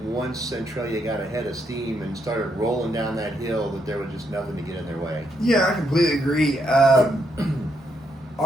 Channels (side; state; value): both; normal; correlation 0.77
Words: Centralia got ahead of steam and started rolling down that hill, that there was just nothing to get in their way. Yeah, I completely agree.